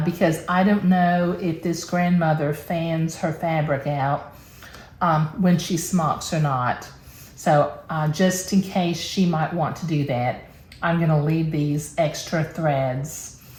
because I don't know if this grandmother fans her fabric out when she smocks or not. So just in case she might want to do that, I'm gonna leave these extra threads.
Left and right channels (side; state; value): both; identical; correlation 1.00